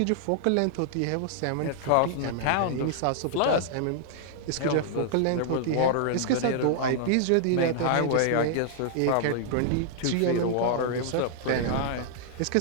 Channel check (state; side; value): different; both; correlation -0.01